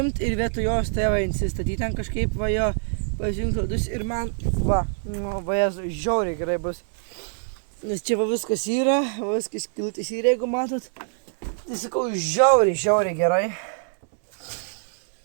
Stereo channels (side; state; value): left; silent; digital silence